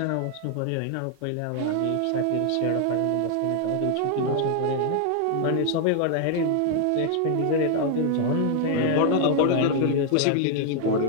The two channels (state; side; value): different; both; correlation 0.00